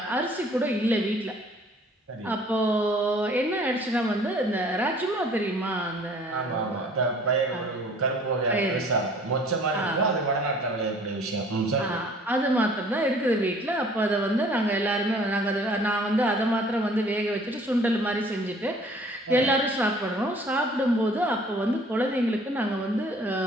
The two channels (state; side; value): normal; both; correlation 0.54